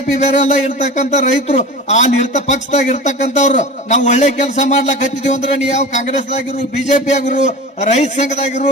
ಬೇರೆ ಅಲ್ಲ, ಇರ್ತಕ್ಕಂಥ ರೈತರು ಅಲ್ಲಿ ಪಕ್ಷದಾಗ ಇರ್ತಕ್ಕಂಥವ್ರು ನಾವು ಒಳ್ಳೆ ಕೆಲಸ ಮಾಡ್ಲಾಕ ಹತ್ತಿದೀವಿ ಅಂದ್ರೆ ನೀವು ಯಾವ ಕಾಂಗ್ರೆಸ್ದಾಗಿರು ಬಿಜೆಪಿ ಆಗಿರು ರೈತ ಸಂಘದಾಗಿರು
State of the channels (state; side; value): normal; both; correlation 0.33